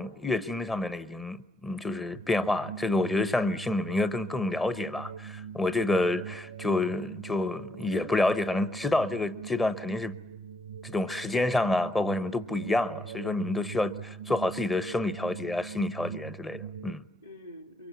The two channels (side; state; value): both; normal; correlation 0.77